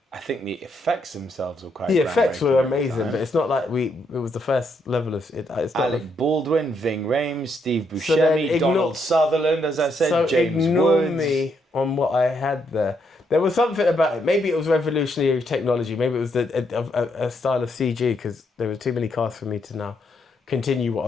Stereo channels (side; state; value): both; normal; correlation 0.76